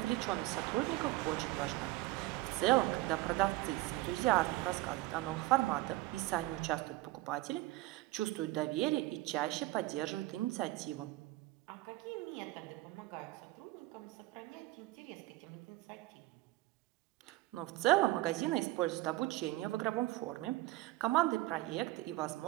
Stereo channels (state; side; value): quieter; left; 18.6 dB